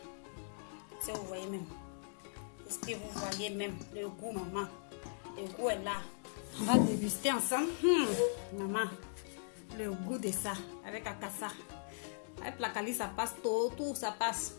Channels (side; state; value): right; silent; digital silence